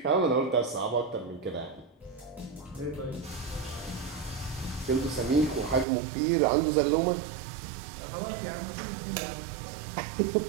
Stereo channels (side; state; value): left; drops out; at 5.9 s